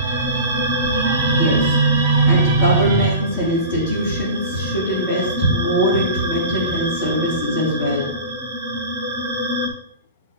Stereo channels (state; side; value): inverted; both; correlation -0.34